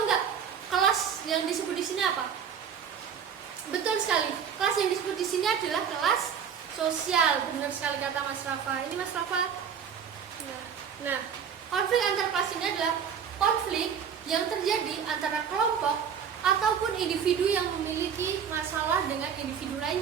nggak? Kelas yang disebut di sini apa? Betul sekali. Kelas yang disebut di sini adalah kelas sosial. Benar sekali kata Mas Rafa. Ini Mas Rafa. Nah, konflik antar kelas ini adalah konflik yang terjadi antara kelompok ataupun individu yang memiliki masalah dengan individu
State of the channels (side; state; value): left; quieter; 7.5 dB